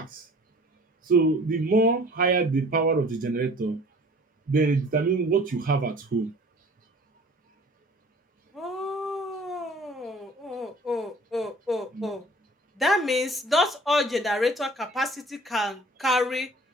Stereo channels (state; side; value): normal; both; correlation 0.49